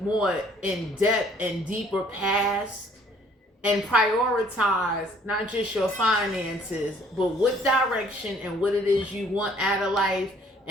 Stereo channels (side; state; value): both; normal; correlation 0.59